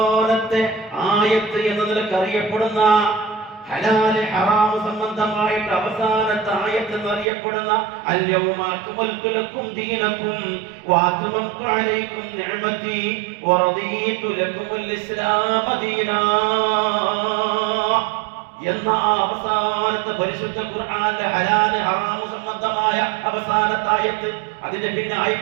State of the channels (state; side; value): drops out; left; at 7.2 s